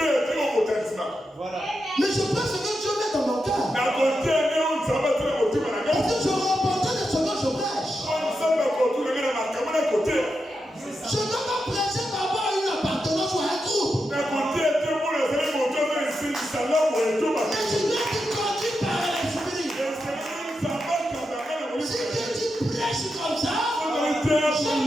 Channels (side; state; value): both; normal; correlation 0.87